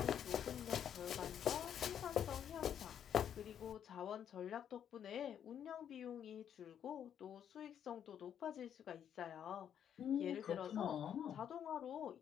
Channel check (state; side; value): quieter; right; 9.1 dB